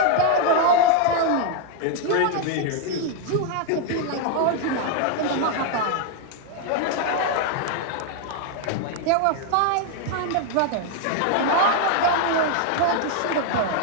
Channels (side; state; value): both; different; correlation 0.00